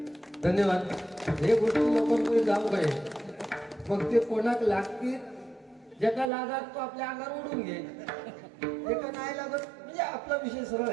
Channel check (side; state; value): left; drops out; at 6.3 s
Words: धन्यवाद. हे गोष्टी लोकांकडे जाऊ काय मग ते कोणाक लागतील ज्याला लागत तो आपल्या अंगावर उडून घे, एका नाही लागत म्हणजे आपला विषय सरळ